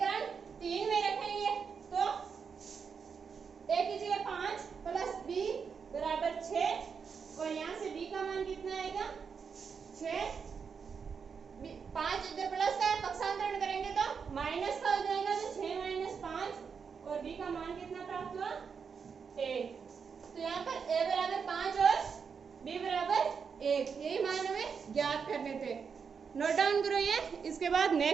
3 में रखेंगे तो A की जगह 5 प्लस B बराबर 6 और यहाँ से B का मान कितना आएगा 6। 5 इधर प्लस का है, पक्षांतरण करेंगे तो माइनस का हो जाएगा, तो 6 माइनस 5 और B का मान कितना प्राप्त हुआ 1। तो यहाँ पर A बराबर 5 और B बराबर 1, यही मान हमें ज्ञात करने थे। नोट डाउन करो ये। इसके बाद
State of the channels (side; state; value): left; quieter; 6.1 dB